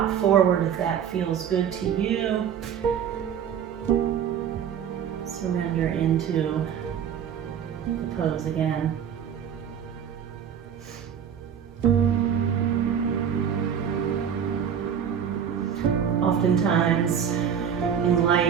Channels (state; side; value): quieter; left; 8.3 dB